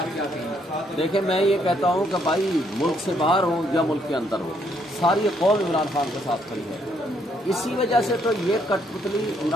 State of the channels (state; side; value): normal; both; correlation 0.71